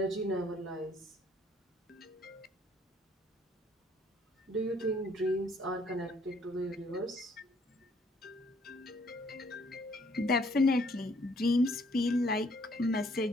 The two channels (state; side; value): normal; both; correlation 0.64